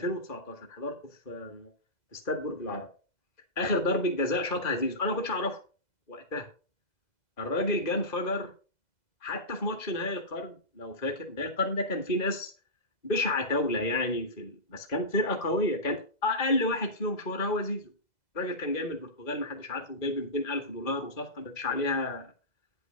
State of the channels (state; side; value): late; right; 2.0 ms